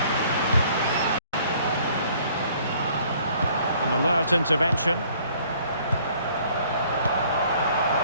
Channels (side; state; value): both; inverted; correlation -0.58